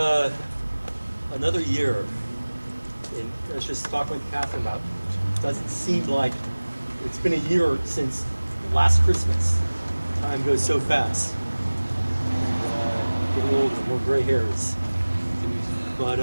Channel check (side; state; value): both; inverted; correlation -1.00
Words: another year. And I was just talking with Catherine about it. Doesn't seem like it's been a year since last Christmas. Time goes so fast. Getting older, more gray hairs.